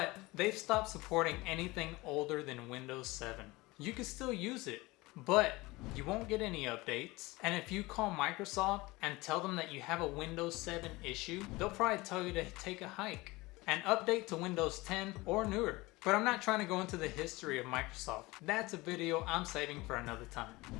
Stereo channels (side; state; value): right; quieter; 21.7 dB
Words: they've stopped supporting anything older than Windows 7. You can still use it, but you won't get any updates. And if you call Microsoft and tell them that you have a Windows 7 issue, they'll probably tell you to take a hike and update to Windows 10 or newer. But I'm not trying to go into the history of Microsoft. That's a video I'm saving for another time.